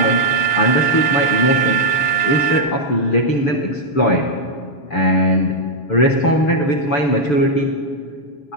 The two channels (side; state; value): right; late; 6.8 ms